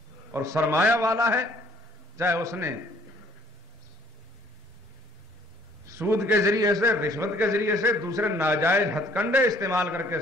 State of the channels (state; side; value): normal; both; correlation 0.60